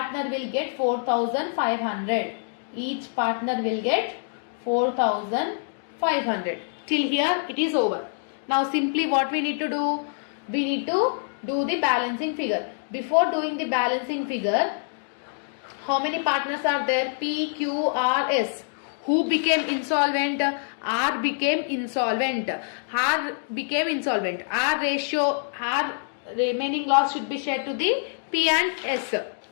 will get 4,500. Each partner will get 4,500. Till here it is over. Now simply what we need to do? We need to do the balancing figure. Before doing the balancing figure, how many partners are there? P, Q, R, S. Who became insolvent? R became insolvent. R became insolvent. R ratio, R remaining loss should be shared to the P and S,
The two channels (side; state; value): right; silent; digital silence